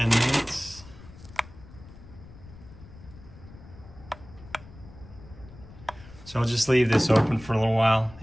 minutes. So I'll just leave this open for a little while.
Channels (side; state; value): left; noise; rumble, 19 dB below the sound